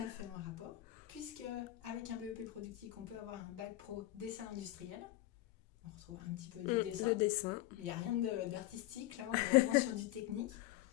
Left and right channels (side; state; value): right; quieter; 15.8 dB